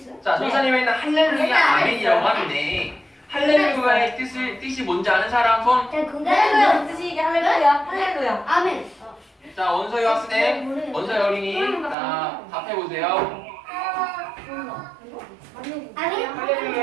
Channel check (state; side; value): drops out; left; at 12.0 s